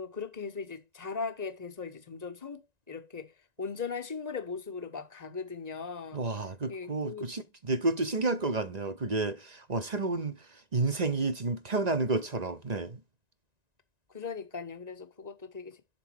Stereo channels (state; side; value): late; left; 1.9 ms